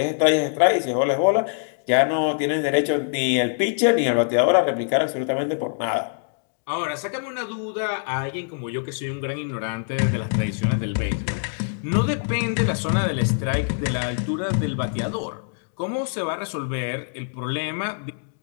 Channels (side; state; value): right; silent; digital silence